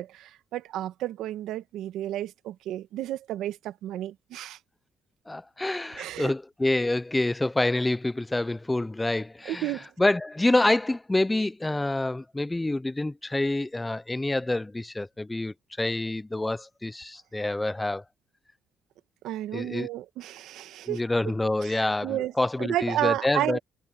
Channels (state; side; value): normal; both; correlation 0.89